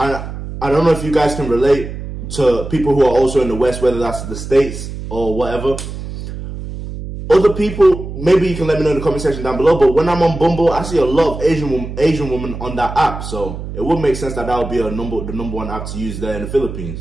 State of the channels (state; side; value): noise; right; hum, 9 dB below the sound